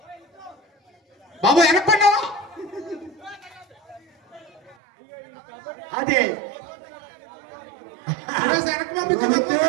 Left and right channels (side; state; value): left; drops out; at 4.8 s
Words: బాబు వెనక్కుండా అదే వెనక్కి పంపించు.